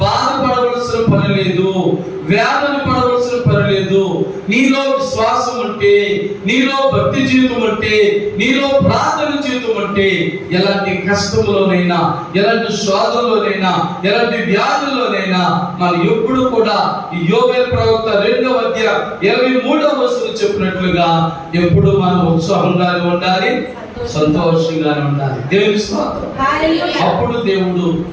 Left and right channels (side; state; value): both; identical; correlation 1.00